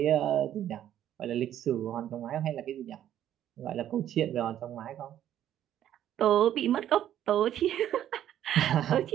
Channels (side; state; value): left; quieter; 11.3 dB